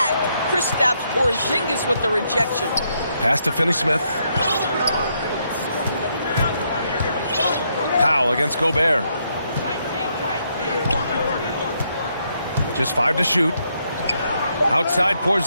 Kristaps Porzingis with the rejection. Pass to Finney Smith. Powell against Gobert. Just 5 to shoot. Outside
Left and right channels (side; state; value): both; inverted; correlation -0.76